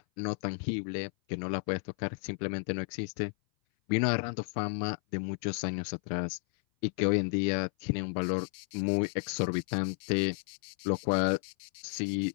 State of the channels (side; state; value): right; silent; 56 dB below the other